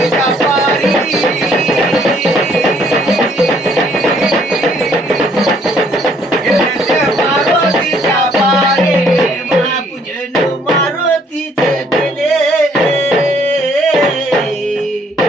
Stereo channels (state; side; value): normal; both; correlation 0.64